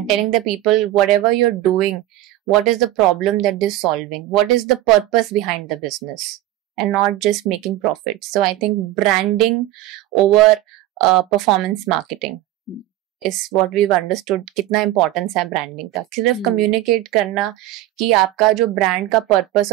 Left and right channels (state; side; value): quieter; left; 15.0 dB